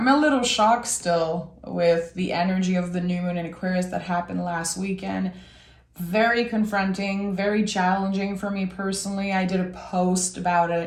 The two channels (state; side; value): identical; both; correlation 1.00